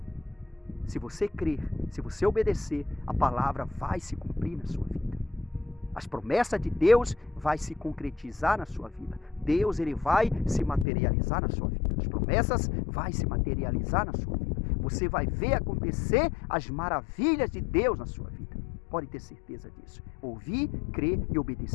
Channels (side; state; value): right; drops out; at 10.9 s